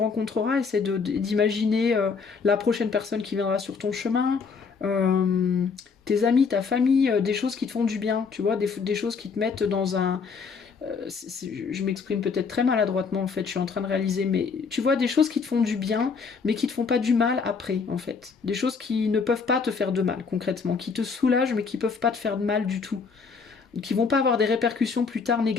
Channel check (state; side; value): quieter; right; 5.3 dB